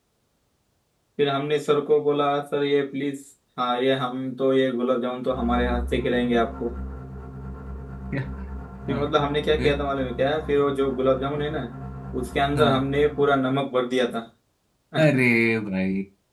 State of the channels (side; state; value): both; identical; correlation 1.00